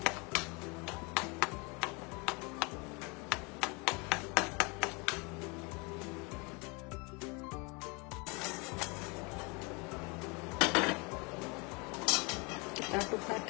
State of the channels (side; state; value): right; quieter; 29.8 dB